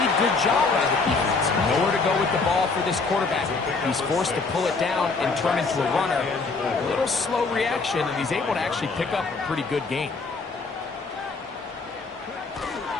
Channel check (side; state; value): right; quieter; 4.2 dB